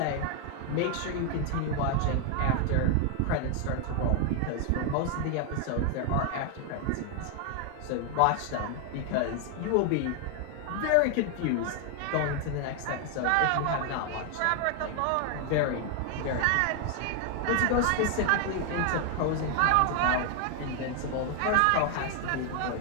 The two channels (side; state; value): both; different; correlation 0.00